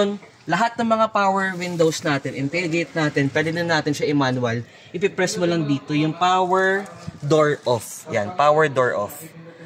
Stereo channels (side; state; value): both; identical; correlation 1.00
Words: lahat ng mga power windows natin and tailgate natin, pwede na natin siya i-manual. Ipipress mo lang dito yung power door off. Yan, power door off.